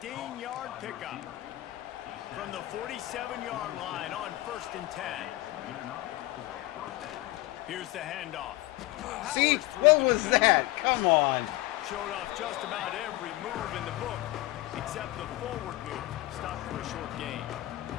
pickup. From the 47-yard line on 1st and 10. Here's the handoff. See? What was that? Come on. Showed off just about every move in the book, except the forward move. Stopped for a short gain.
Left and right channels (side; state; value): right; quieter; 18.3 dB